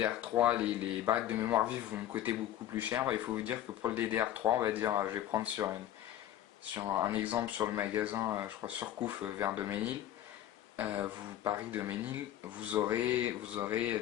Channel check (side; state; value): right; quieter; 12.3 dB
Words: les barrettes de mémoire vive vont me coûter beaucoup plus cher. Il faut vous dire que pour le DDR3, on va dire, je vais prendre sur un exemple sur le magasin, je crois Surcouf vers Doménil. Paris Doménil, vous aurez